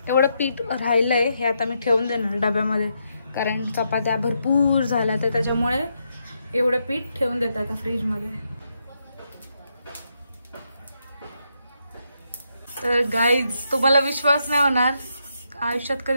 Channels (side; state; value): both; inverted; correlation -0.80